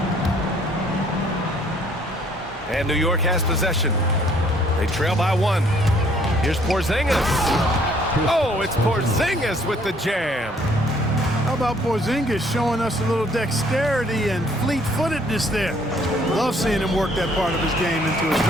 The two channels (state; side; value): normal; both; correlation 0.62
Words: And New York has possession. They trail by 1. Here's Porzingis. Oh, it's Porzingis with the jam. How about Porzingis showing us a little dexterity and fleet-footedness there? Love seeing him work that part of his game into his